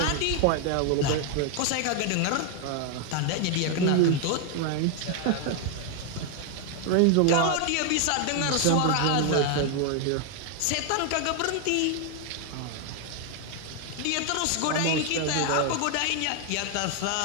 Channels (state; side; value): different; both; correlation 0.00